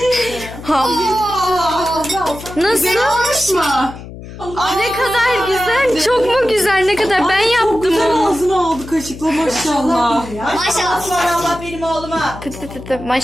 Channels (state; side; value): noise; left; hum, 14 dB below the sound